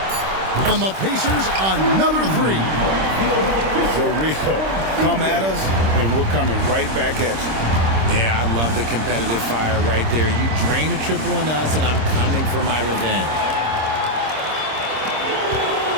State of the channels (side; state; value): left; late; 26 ms